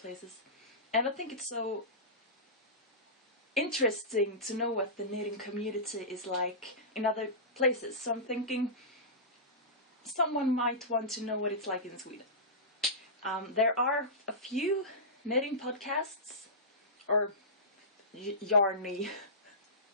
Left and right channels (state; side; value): normal; both; correlation -0.18